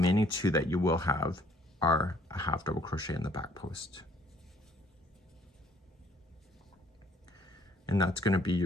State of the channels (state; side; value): normal; both; correlation 0.62